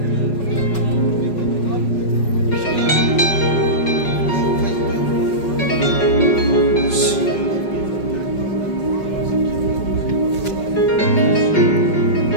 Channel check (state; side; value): late; right; 5.4 ms